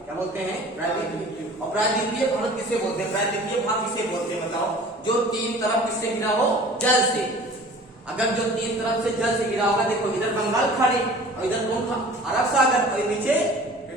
क्या बोलते हैं, प्रायद्वीपीय। और प्रायद्वीपीय भारत किसे बोलते हैं, प्रायद्वीपीय भाग किसे बोलते हैं बताओ, जो तीन तरफ किससे घिरा हो, जल से। अगर जो तीन तरफ से जल से घिरा होगा, देखो इधर बंगाल खाड़ी, और इधर कौन था, अरब सागर, और नीचे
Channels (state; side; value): normal; both; correlation 0.45